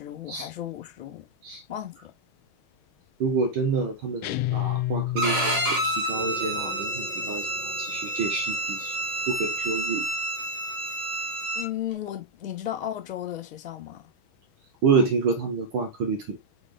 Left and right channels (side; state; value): left; late; 6.3 ms